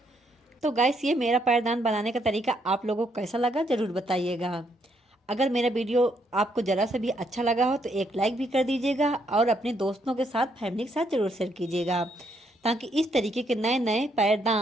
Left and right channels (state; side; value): normal; both; correlation 0.74